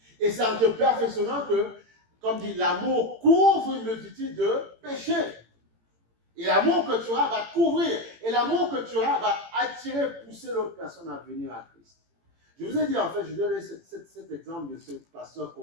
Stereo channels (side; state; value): left; late; 18 ms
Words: Et c'est en te perfectionnant que, comme dit, l'amour couvre une multitude de péchés. Et l'amour que tu auras va couvrir. Et l'amour que tu auras va attirer, pousser l'autre personne à venir à Christ. Je vous ai dit, en fait, je vais donner cet exemple de ce pasteur